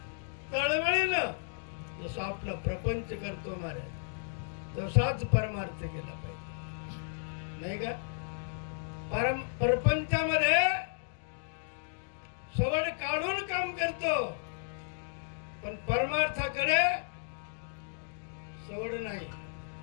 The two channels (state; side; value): silent; right; digital silence